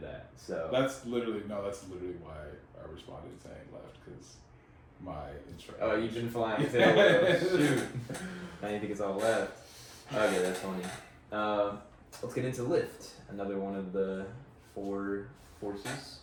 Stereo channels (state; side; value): identical; both; correlation 1.00